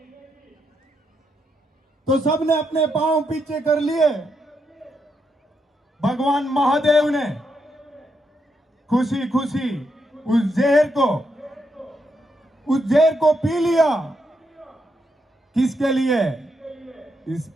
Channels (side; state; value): both; normal; correlation 0.80